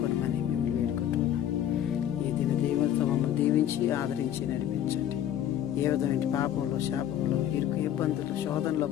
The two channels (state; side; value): quieter; right; 10.9 dB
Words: మిమ్మల్ని వేడుకుంటున్నాం. ఈ దిన దీవులతో మమ్మల్ని దీవించి ఆదరించి నడిపించండి. ఏ విధమైన పాపంలో, శాపంలో, ఇరుకు, ఇబ్బందులు, శోధనలో